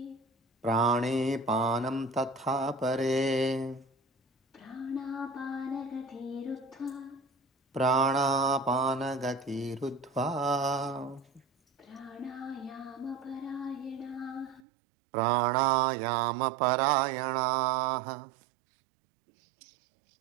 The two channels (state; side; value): drops out; left; at 14.6 s